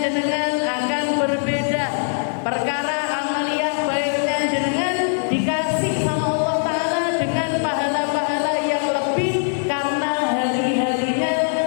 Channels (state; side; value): silent; right; digital silence